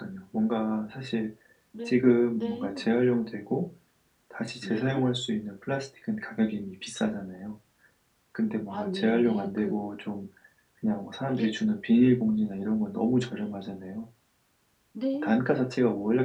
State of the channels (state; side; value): identical; both; correlation 1.00